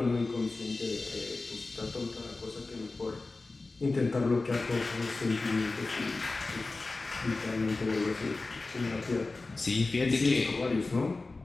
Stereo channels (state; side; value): quieter; right; 3.5 dB